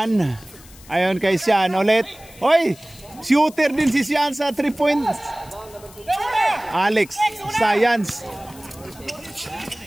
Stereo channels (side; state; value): left; noise; hiss, 22 dB below the sound